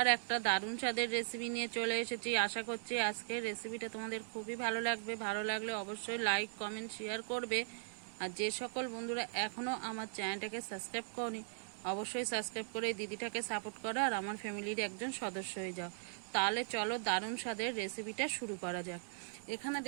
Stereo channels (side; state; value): left; silent; digital silence